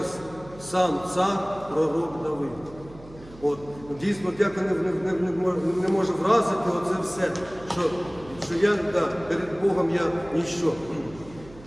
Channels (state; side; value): noise; right; hum, 20 dB below the sound